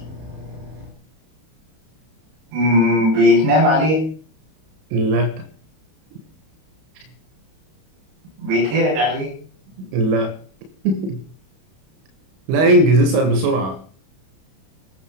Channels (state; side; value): late; left; 32 ms